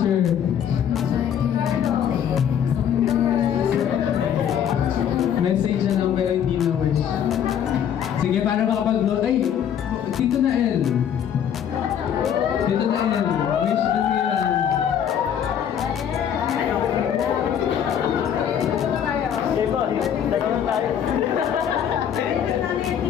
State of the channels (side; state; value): right; quieter; 9.0 dB